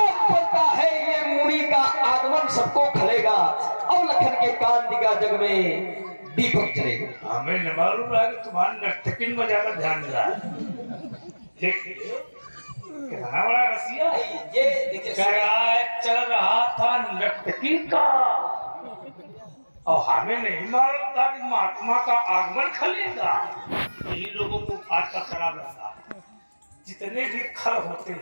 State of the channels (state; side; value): inverted; both; correlation -1.00